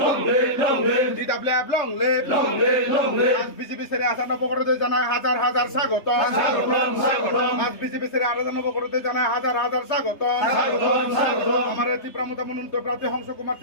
DWF long le, আজ BJP সেরে আসা নবগরতে জানায় হাজার হাজার স্বাগত। আজ বিজেপি সেরে আলাদা নবগরতে জানায় হাজার হাজার স্বাগত। আমার ত্রিপুরামতা মনোনীত প্রার্থী হংস কুমার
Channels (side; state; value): right; late; 3.3 ms